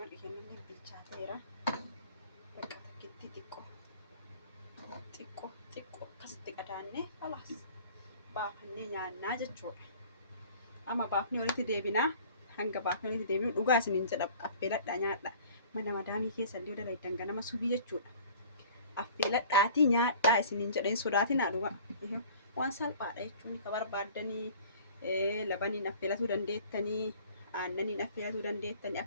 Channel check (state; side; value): inverted; both; correlation -0.48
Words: هنا اللي بالشاتيرة بقى تكتي تكو كستي كداني خلاص بافني نyaanna jechuudha amma baafni walitti deebina hanga baafni walitti deebinu dhugaa isiniin jedha affeeladhaa nyaadha mana madaamii keessa illee dalaydan ganama subii jechuudha affeeladhaati nyaadhaa isiniin jedheen sodaatinaa dhugaa waan salphaadha jechuun ka barbaaddanii labaniin affeelatuu dandeettanii aannaniin affeelatuu dandeettanii